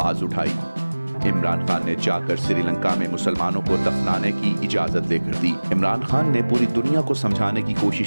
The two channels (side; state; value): both; inverted; correlation -1.00